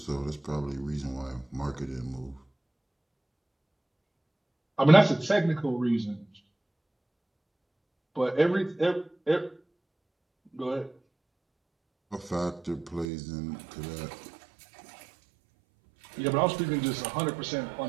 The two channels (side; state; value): left; drops out; at 13.1 s